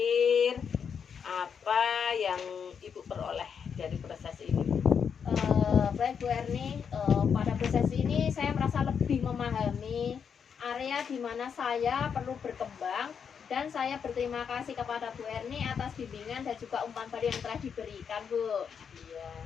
apa yang Ibu peroleh dari proses ini? Baik Bu Erni, pada proses ini saya merasa lebih memahami area di mana saya perlu berkembang dan saya berterima kasih kepada Bu Erni atas bimbingan dan juga umpan balik yang telah diberikan Bu. Iya,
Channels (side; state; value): right; quieter; 7.0 dB